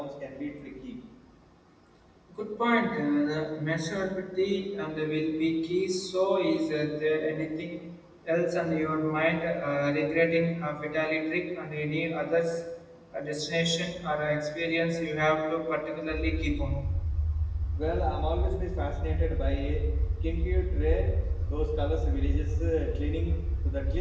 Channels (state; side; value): identical; both; correlation 1.00